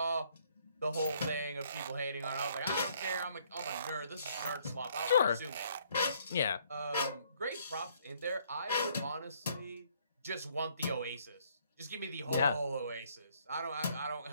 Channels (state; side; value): inverted; both; correlation -0.65